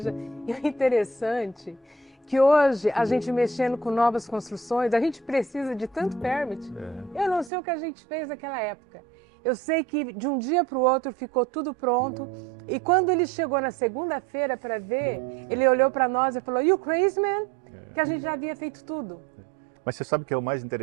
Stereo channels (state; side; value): drops out; left; at 7.5 s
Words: E o interessante que hoje, a gente mexendo com novas construções, a gente precisa de tanto permit. Eu não sei o que a gente fez naquela época. Eu sei que de um dia para o outro ficou tudo pronto. E quando ele chegou na segunda-feira para ver, ele olhou para nós e falou, "You crazy man?" Que a gente já havia feito tudo. Mas você sabe que é o mais